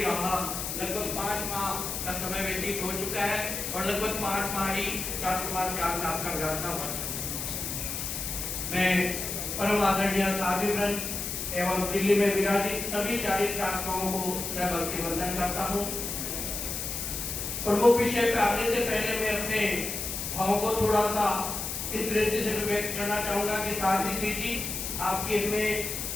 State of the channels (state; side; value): noise; left; hiss, 4 dB below the sound